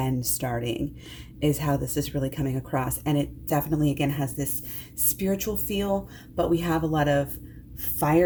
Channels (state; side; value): identical; both; correlation 1.00